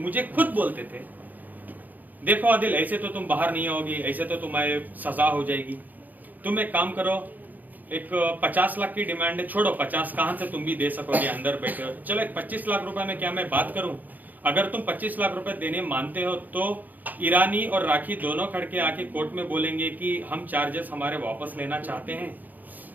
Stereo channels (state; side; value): late; left; 0.083 ms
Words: खुद बोलते थे देखो आदिल ऐसे तो तुम बाहर नहीं आओगी, ऐसे तो तुम्हारे सजा हो जाएगी, तुम एक काम करो, एक 50 लाख की डिमांड है, छोड़ो 50 कहां से तुम भी दे सकोगे, अंदर बैठे हो, चलो एक 25 लाख रुपए में क्या मैं बात करूं, अगर तुम 25 लाख रुपए देने मानते हो तो ईरानी और राखी दोनों खड़के आके कोर्ट में बोलेंगे कि हम चार्जेस हमारे वापस लेना चाहते हैं,